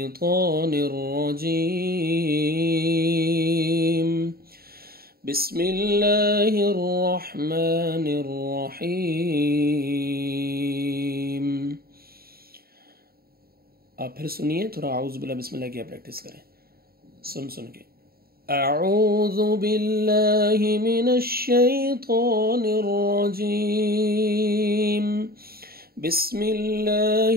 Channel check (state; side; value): late; left; 0.44 ms